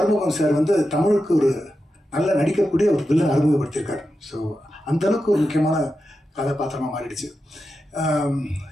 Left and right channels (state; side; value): normal; both; correlation 0.90